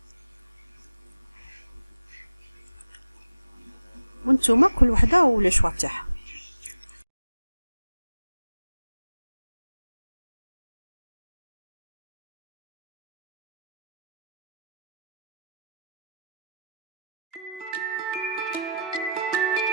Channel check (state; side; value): inverted; both; correlation -0.84